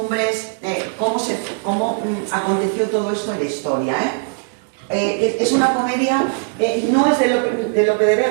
cómo aconteció todo esto en la historia. Es una comedia, no es de Lope de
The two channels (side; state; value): left; silent; 66 dB below the other